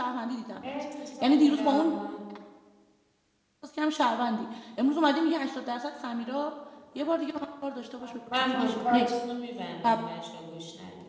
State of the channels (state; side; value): identical; both; correlation 1.00